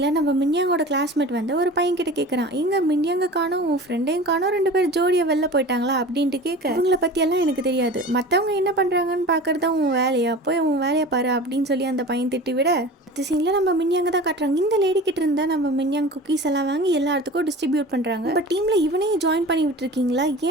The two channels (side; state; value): both; normal; correlation 0.36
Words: நம்ம மின்யாங்கோட கிளாஸ்மேட் வந்து ஒரு பையன் கிட்ட கேட்குறான், எங்க மின்யாங்க காணோம், உன் ஃப்ரெண்டையும் காணோம், 2 பேர் ஜோடியை வெளில போயிட்டாங்களா அப்படின்ட்டு கேட்க, இவங்கள பற்றியெல்லாம் எனக்கு தெரியாது, மற்றவங்க என்ன பண்ணுறாங்கன்னு பார்க்குறது தான் உன் வேலையா, போய் உன் வேலையை பாரு அப்படின்னு சொல்லி அந்த பையன் திட்டி விட, அடுத்த சீனில் நம்ம மின்யாங்க தான் காட்டுறாங்க. இந்த லேடி கிட்ட இருந்தால் நம்ம மின்யாங் குக்கீஸ் எல்லாம் வாங்கி எல்லாத்துக்கும் டிஸ்ட்ரிபியூட் பண்ணுறாங்க. இப்போ டீமில் இவனையும் ஜாயின் பண்ணி விட்டுருக்கீங்களா,